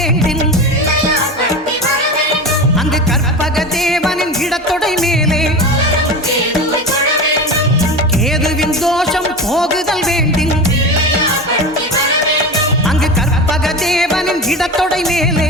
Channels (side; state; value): both; normal; correlation 0.27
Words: அங்கு கற்பக தேவனின் இடத்தொடை மேலே கேதுவின் தோஷம் போகுதல் வேண்டின் அங்கு கற்பக தேவனின் இடத்தொடை